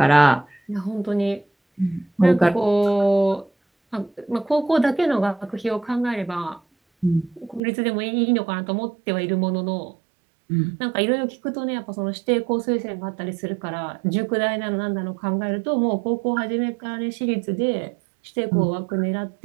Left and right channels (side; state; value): left; drops out; at 7.6 s